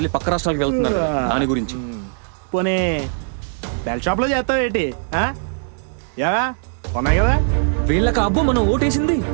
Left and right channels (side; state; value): left; silent; digital silence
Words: పక్క రాష్ట్రాలకు వెళ్తున్నారు కదా, దాని గురించి. పోనీ బెల్ షాప్లో చేస్తావేటి? యావా ఉన్నాయి కదా. వీళ్ళకి అబ్బు మనం ఓటేసింది.